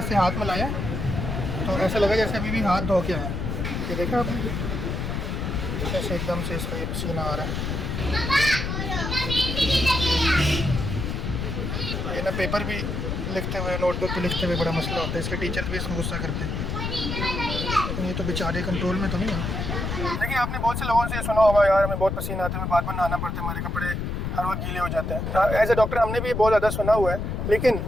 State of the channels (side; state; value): left; noise; rumble, 3 dB below the sound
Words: हाथ मिलाया तो ऐसा लगा जैसे अभी भी हाथ धो के आया। ये देखा आपने, ऐसे एकदम से इसका ये पसीना आ रहा है। ये ना पेपर भी लिखते हुए, नोटबुक पे लिखते हुए बड़ा मसला होता है। इसके टीचर्स भी इसको गुस्सा करते हैं, लेकिन ये तो बेचारे कंट्रोल में तो नहीं है। देखिए, आपने बहुत से लोगों से सुना होगा, यार हमें बहुत पसीना आता है, हमें बार बार नहाना पड़ता है, हमारे कपड़े हर वक्त गीले हो जाते हैं। एज ए डॉक्टर हमने भी बहुत ज़्यादा सुना हुआ है, लेकिन